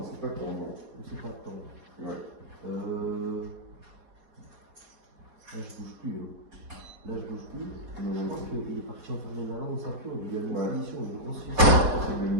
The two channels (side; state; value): left; late; 4.4 ms